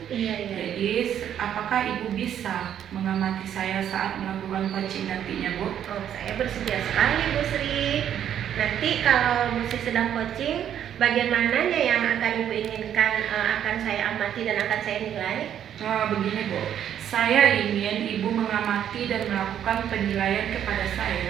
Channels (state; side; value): quieter; left; 9.9 dB